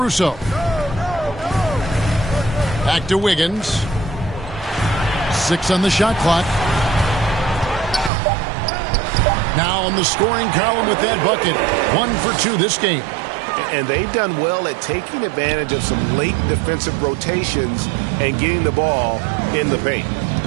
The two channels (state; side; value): drops out; left; at 8.1 s